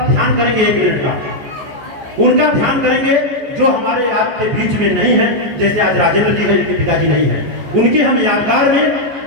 ध्यान करेंगे 1 मिनट का। उनका ध्यान करेंगे जो हमारे आपके बीच में नहीं है। जैसे आज राजेंद्र जी हैं, जिनके पिताजी नहीं है, उनके हम यादगार में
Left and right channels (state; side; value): late; left; 14 ms